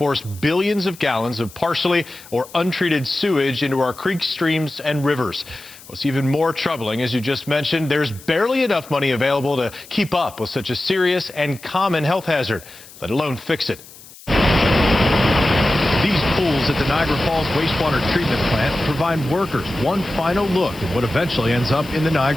billions of gallons of partially or untreated sewage into our creeks, streams, and rivers. What's even more troubling, as you just mentioned, there's barely enough money available to keep up with such a serious and common health hazard, let alone fix it. These pools at the Niagara Falls wastewater treatment plant provide workers one final look at what eventually ends up in the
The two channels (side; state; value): left; noise; hiss, 20 dB below the sound